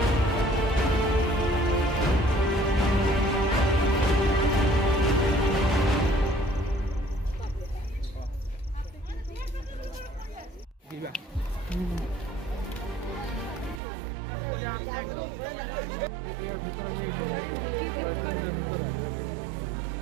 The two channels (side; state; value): left; drops out; at 13.8 s